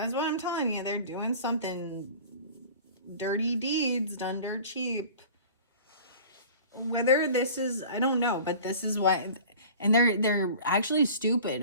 what I'm telling you. They're doing something dirty deeds done dirt cheap. Whether this is, I don't know, but this is what, and they're actually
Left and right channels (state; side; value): inverted; both; correlation -0.42